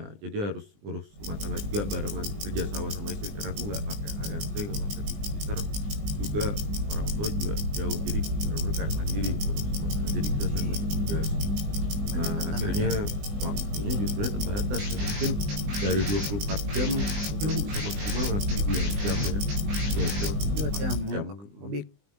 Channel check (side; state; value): left; late; 20 ms